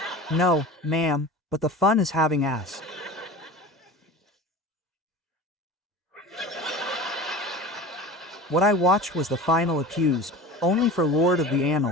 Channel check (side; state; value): both; normal; correlation 0.35